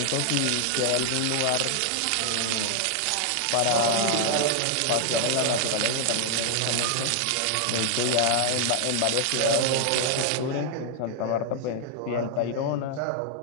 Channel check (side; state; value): both; different; correlation 0.00